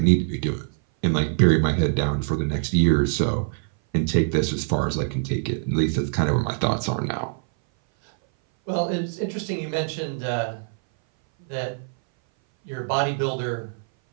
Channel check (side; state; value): left; silent; 59 dB below the other